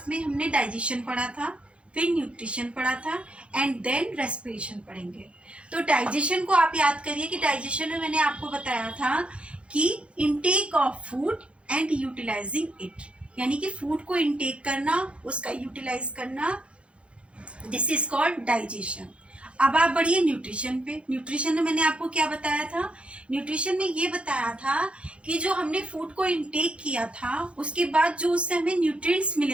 में हमने डाइजेशन पढ़ा था, फिर न्यूट्रिशन पढ़ा था एंड देन रेस्पिरेशन पढ़ेंगे। तो डाइजेशन को आप याद करिए कि डाइजेशन में मैंने आपको बताया था कि intake of food and utilising it, यानी कि फूड को इनटेक करना, उसका यूटिलाइज करना, दिस इज कॉल्ड डाइजेशन। अब आप बढ़िए न्यूट्रिशन पे। न्यूट्रिशन में मैंने आपको क्या बताया था? न्यूट्रिशन में ये बताया था कि जो हमने फूड को इनटेक किया था उसके बाद जो उससे हमें न्यूट्रिएंट्स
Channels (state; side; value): late; left; 0.060 ms